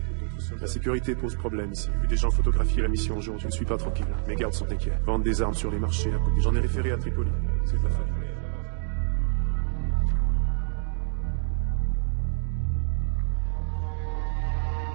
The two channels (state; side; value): silent; left; 58 dB below the other